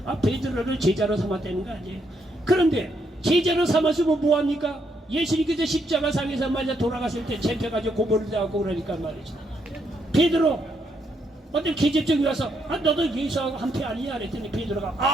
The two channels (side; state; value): both; normal; correlation 0.76